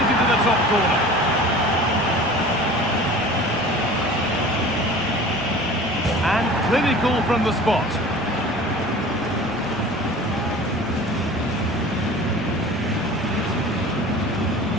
into the top corner. And clinical from the spot.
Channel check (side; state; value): left; noise; hum, 22 dB below the sound